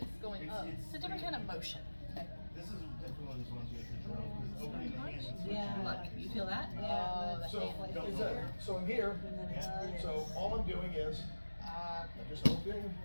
going up. it's a different kind of motion. This is definitely one of these ones you have to drill, because opening the hands. Yeah. Look, you feel that? Oh, the So, hand. is that, so in here, so all I'm doing is, I'm just opening,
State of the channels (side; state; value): both; inverted; correlation -1.00